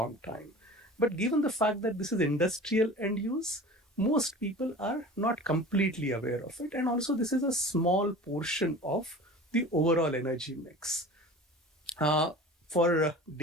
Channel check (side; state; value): both; normal; correlation 0.38